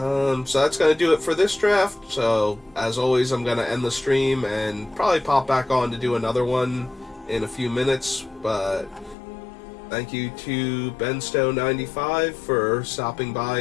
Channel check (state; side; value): drops out; right; at 9.2 s